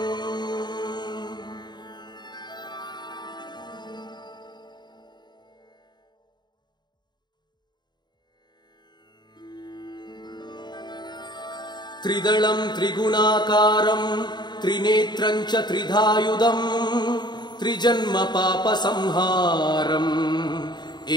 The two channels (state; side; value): late; right; 0.21 ms